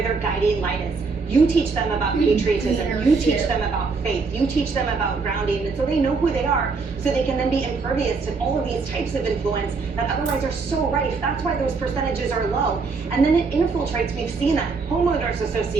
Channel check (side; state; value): left; quieter; 4.5 dB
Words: their guiding light is. You teach them about patriotism, you teach them about faith, you teach them about grounding, and so they know who they are, so they can then be impervious to all of these types of influence that otherwise are so rife. That's why those percentages are low. And then it infiltrates, we've seen that, homeowners